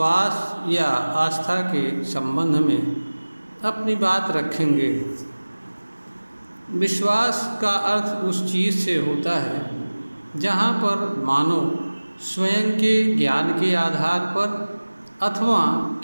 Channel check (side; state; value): both; inverted; correlation -1.00